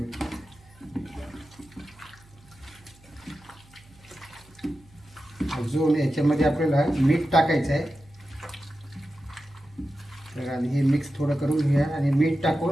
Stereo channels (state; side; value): noise; right; hum, 26 dB below the sound